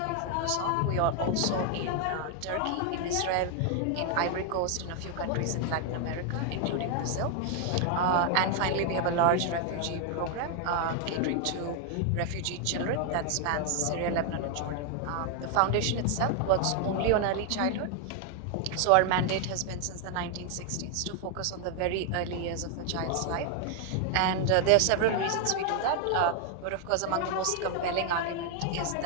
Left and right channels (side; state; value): both; different; correlation 0.01